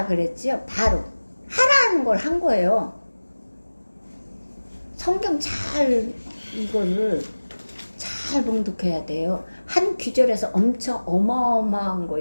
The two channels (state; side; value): inverted; both; correlation -1.00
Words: 그랬지요. 바로 하라는 걸 한 거예요. 성경 이거를 잘 봉독해야 돼요. 한 귀절에서 엄청 어마어마한